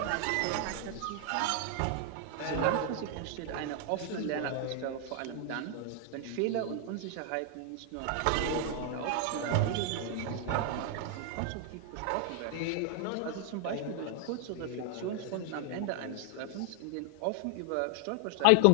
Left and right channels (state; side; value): different; both; correlation 0.00